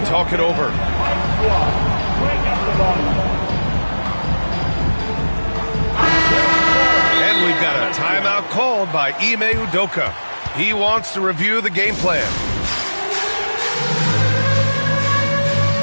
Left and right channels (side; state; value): both; inverted; correlation -1.00